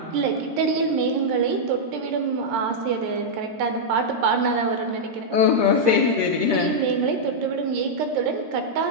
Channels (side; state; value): left; late; 13 ms